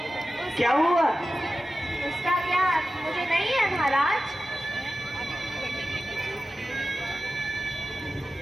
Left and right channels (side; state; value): both; normal; correlation 0.94